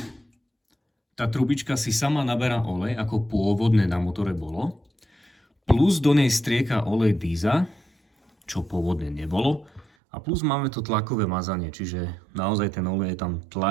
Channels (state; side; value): drops out; left; at 9.9 s